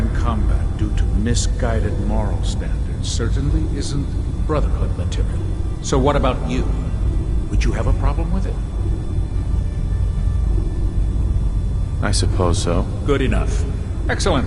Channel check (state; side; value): identical; both; correlation 1.00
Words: combat due to misguided moral standards certainly isn't Brotherhood material. So what about you? Would you have a problem with it? I suppose so. Good enough.